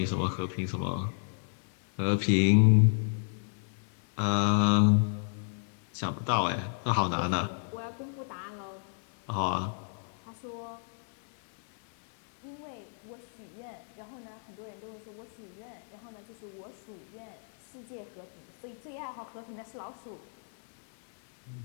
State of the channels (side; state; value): right; silent; 56 dB below the other